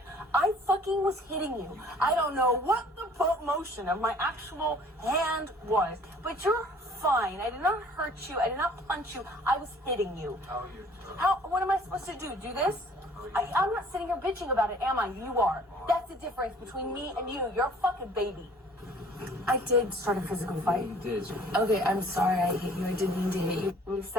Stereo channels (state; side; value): normal; both; correlation 0.54